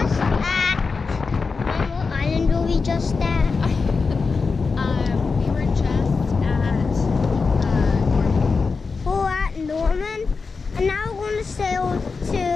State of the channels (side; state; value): right; quieter; 4.6 dB